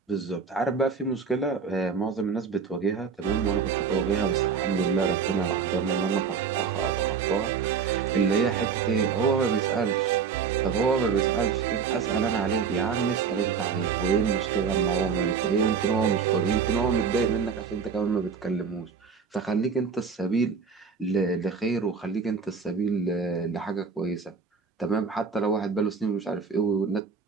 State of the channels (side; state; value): left; quieter; 5.8 dB